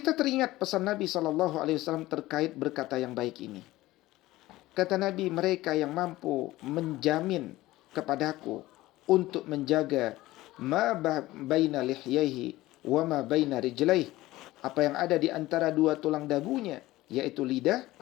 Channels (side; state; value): right; quieter; 17.5 dB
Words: teringat pesan Nabi SAW terkait berkata yang baik ini. Kata Nabi, mereka yang mampu menjamin kepadaku untuk menjaga ma baina lihyaihi wa ma baina rijlaihi, apa yang ada di antara dua tulang dagunya, yaitu lidah,